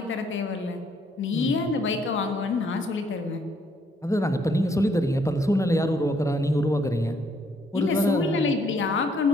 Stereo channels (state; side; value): normal; both; correlation 0.68